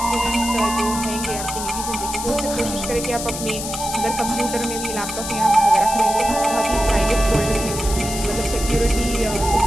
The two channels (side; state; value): left; noise; hiss, 6 dB below the sound